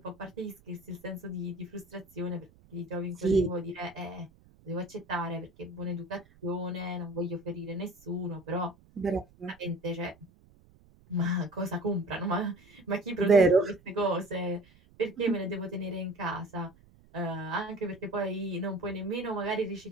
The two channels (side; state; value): right; noise; rumble, 27 dB below the sound